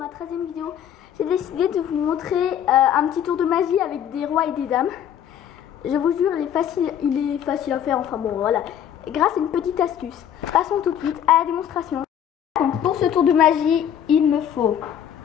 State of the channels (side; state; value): right; quieter; 9.6 dB